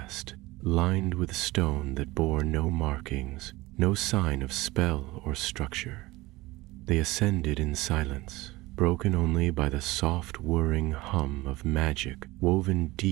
lined with stone that bore no markings, no sign of spell or structure. They ascended in silence, broken only by the soft whirring hum of magic woven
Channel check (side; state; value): left; quieter; 20.2 dB